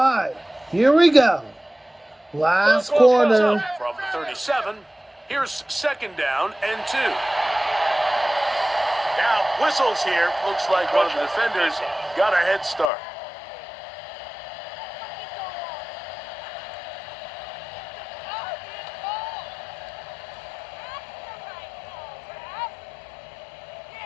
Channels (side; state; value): right; drops out; at 12.9 s